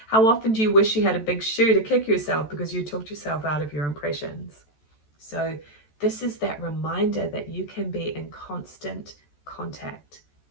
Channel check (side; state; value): right; late; 14 ms